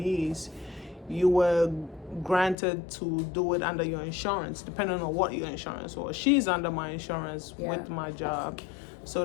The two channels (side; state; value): right; drops out; at 2.6 s